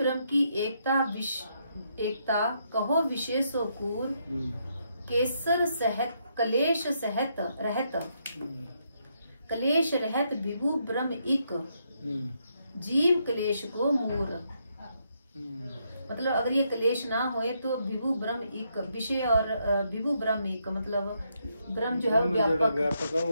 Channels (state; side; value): inverted; both; correlation -0.77